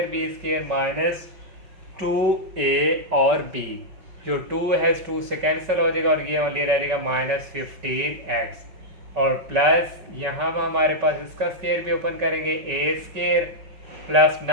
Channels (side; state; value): left; late; 5.2 ms